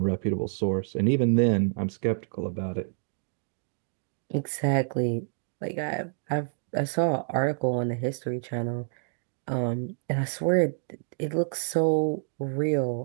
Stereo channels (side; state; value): left; silent; digital silence